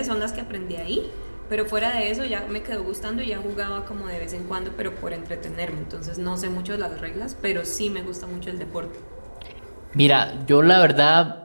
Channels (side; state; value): both; inverted; correlation -1.00